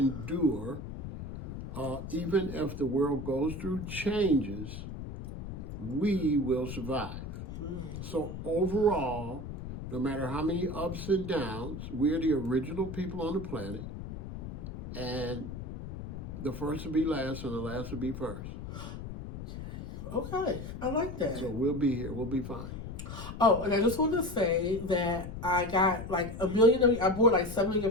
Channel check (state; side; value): noise; left; rumble, 9 dB below the sound